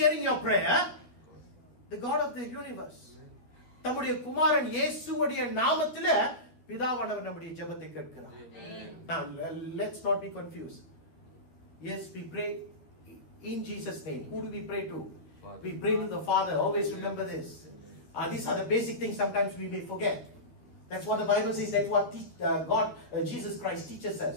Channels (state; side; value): late; right; 12 ms